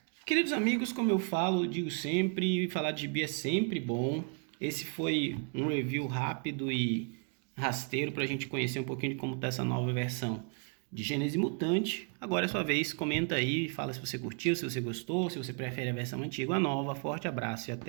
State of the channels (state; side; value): quieter; left; 38.9 dB